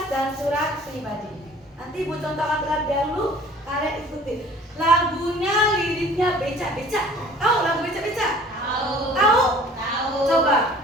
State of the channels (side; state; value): both; normal; correlation 0.49